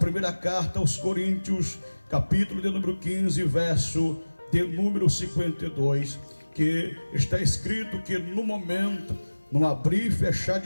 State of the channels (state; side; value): inverted; both; correlation -1.00